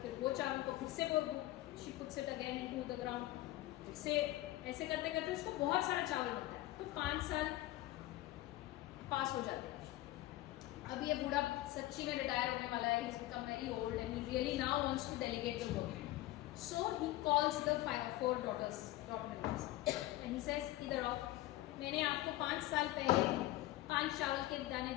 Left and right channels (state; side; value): quieter; right; 16.6 dB